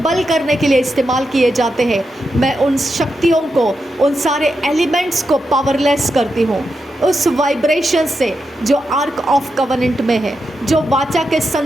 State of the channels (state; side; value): normal; both; correlation 0.86